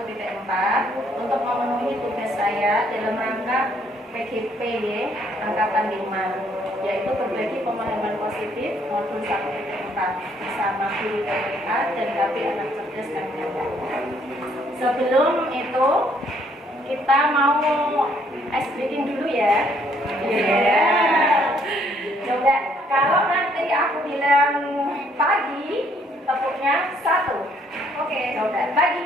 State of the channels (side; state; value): both; normal; correlation 0.66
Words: untuk memenuhi tugas saya dalam rangka PGP Angkatan 5, yaitu berbagi pemahaman positif modul 1.4 bersama guru TPA dan KB Anak Cerdas kami. Sebelum itu kita mau ice breaking dulu ya. Coba kalau nanti aku bilang pagi, tepuknya 1. Oke, coba